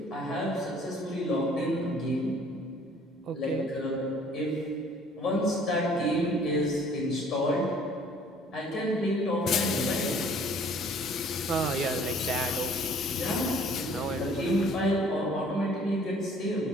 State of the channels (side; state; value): both; normal; correlation 0.56